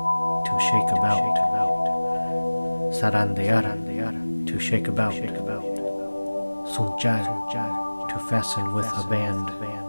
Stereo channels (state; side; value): inverted; both; correlation -1.00